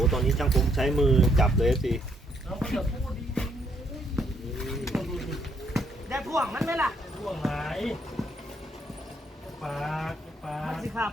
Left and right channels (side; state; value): both; normal; correlation 0.71